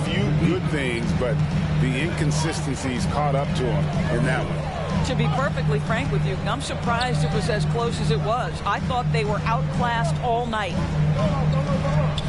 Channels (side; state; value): both; identical; correlation 1.00